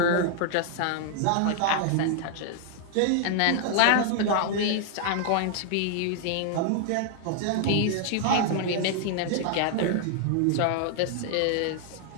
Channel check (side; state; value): both; different; correlation 0.00